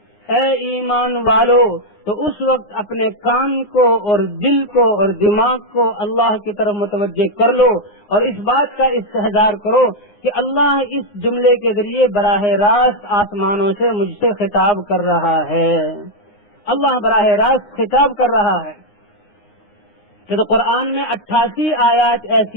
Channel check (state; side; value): late; right; 9.7 ms